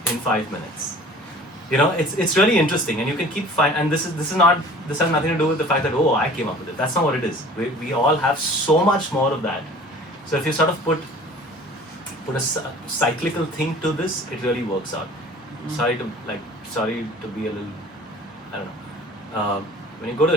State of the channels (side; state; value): both; normal; correlation 0.46